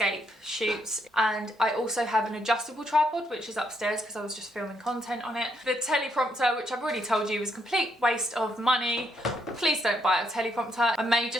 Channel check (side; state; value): both; normal; correlation 0.75